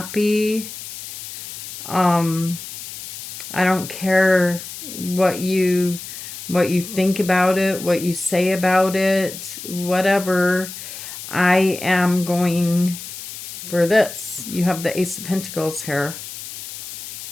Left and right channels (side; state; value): left; noise; hiss, 11 dB below the sound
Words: I don't care what you think about it, what you say about it, whatever. I am going for this. You have the Ace of Pentacles here.